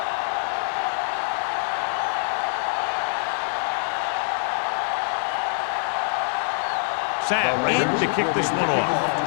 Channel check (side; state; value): right; silent; digital silence